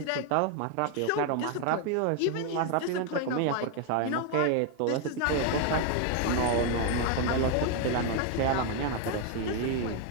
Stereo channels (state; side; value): different; both; correlation 0.01